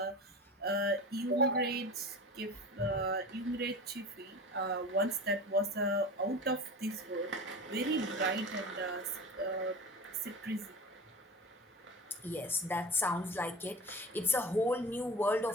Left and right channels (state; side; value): normal; both; correlation 0.33